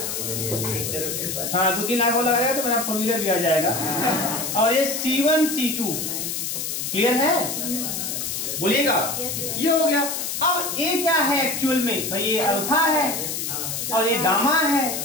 हाँ 2-3 लाख हो लगाएगा तो मेरा 4 व्हीलर भी आ जाएगा, और ये C1 C2। क्लियर है? बोलिएगा। ये हो गया। अब A क्या है एक्चुअल में, भाई ये अल्फा है और ये गामा है,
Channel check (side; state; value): left; noise; hiss, 3 dB below the sound